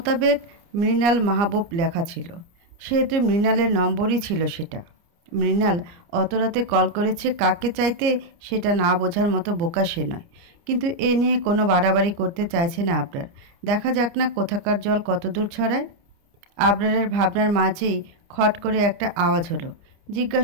মৃণাল মাহবুব লেখা ছিল, সেহেতু মৃণালের নম্বরই ছিল সেটা। মৃণাল অত রাতে কল করেছে কাকে চাইতে সেটা না বোঝার মতো বোকা সে নয়। কিন্তু এ নিয়ে কোনো বাড়াবাড়ি করতে চাইছে না আবরার। দেখা যাক না কোথাকার জল কত দূর ছড়ায়। আবরারের ভাবনার মাঝেই খট করে একটা আওয়াজ হলো।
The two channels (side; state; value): left; late; 29 ms